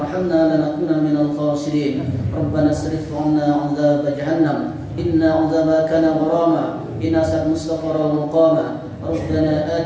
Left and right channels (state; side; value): identical; both; correlation 1.00